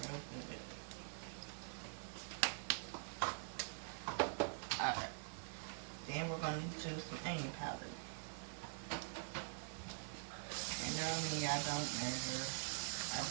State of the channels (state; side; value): silent; left; digital silence